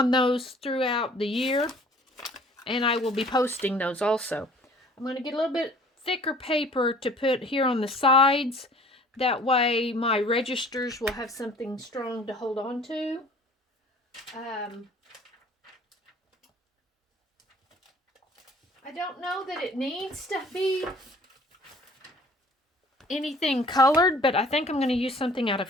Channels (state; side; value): normal; both; correlation 0.51